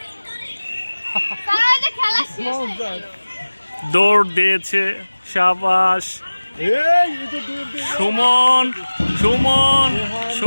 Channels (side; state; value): both; inverted; correlation -1.00